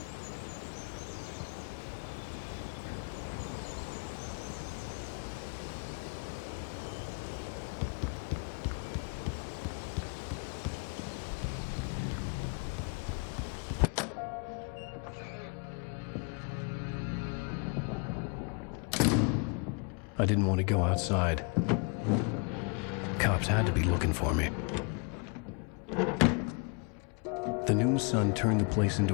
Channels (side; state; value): right; quieter; 34.8 dB